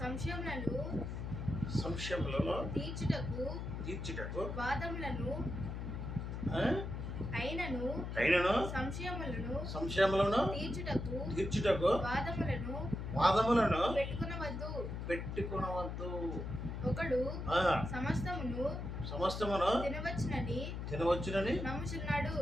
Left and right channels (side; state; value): left; noise; hum, 5 dB below the sound